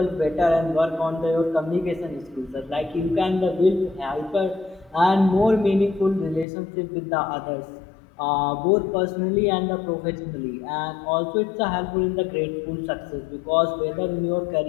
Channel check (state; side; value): drops out; right; at 6.5 s